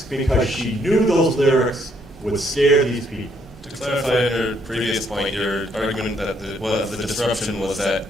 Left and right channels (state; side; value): normal; both; correlation 0.70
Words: because she knew those lyrics would scare these people. To clarify your previous point, your argument that the disruption was that